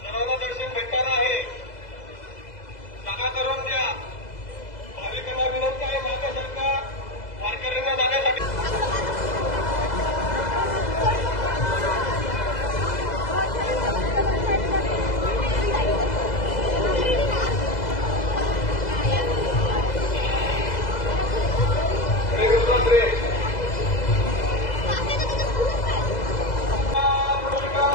सर्वांना दर्शन भेटणार आहे. जागा करून द्या. भाविकांना विनंती आहे, मागे सरका. वारकऱ्यांना जाण्यासाठी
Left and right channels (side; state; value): right; late; 2.0 ms